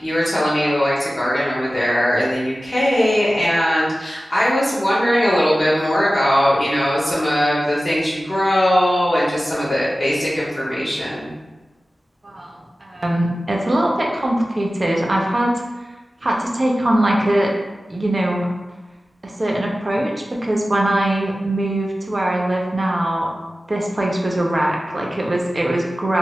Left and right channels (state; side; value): normal; both; correlation 0.95